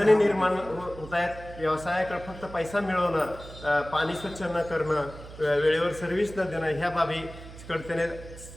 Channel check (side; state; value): right; noise; hum, 15 dB below the sound